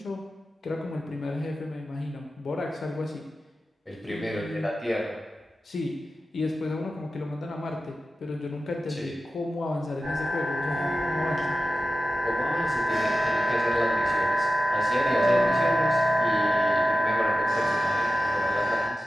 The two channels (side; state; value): both; normal; correlation 0.93